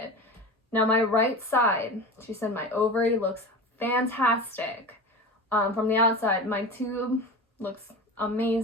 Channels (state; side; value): normal; both; correlation 0.30